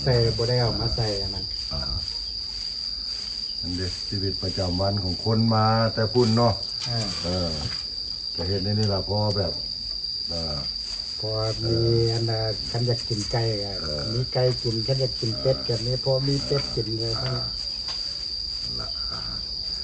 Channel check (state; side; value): identical; both; correlation 1.00